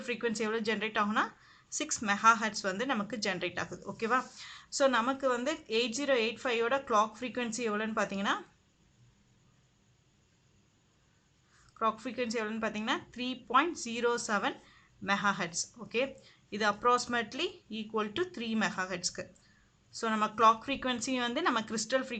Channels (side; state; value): both; identical; correlation 1.00